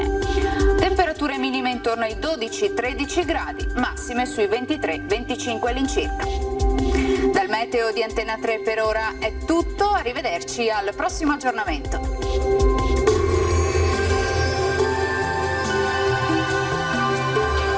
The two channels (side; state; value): both; identical; correlation 1.00